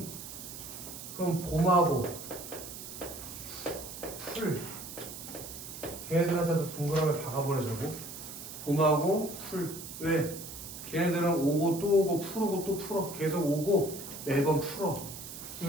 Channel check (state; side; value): noise; right; hiss, 11 dB below the sound